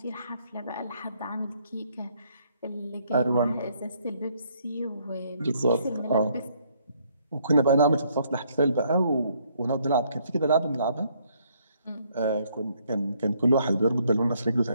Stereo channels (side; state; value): both; inverted; correlation -0.68